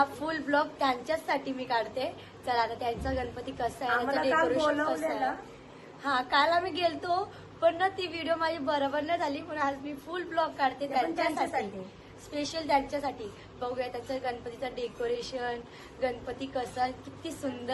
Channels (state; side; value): identical; both; correlation 1.00